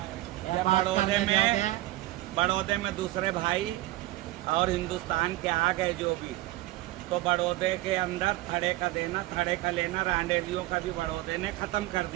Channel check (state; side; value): quieter; left; 17.2 dB